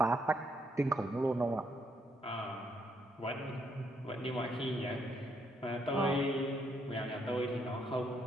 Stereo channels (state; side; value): normal; both; correlation 0.74